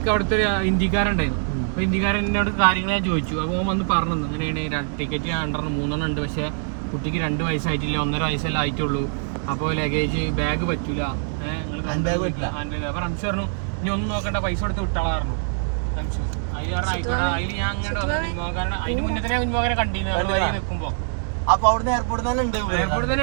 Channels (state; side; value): silent; left; digital silence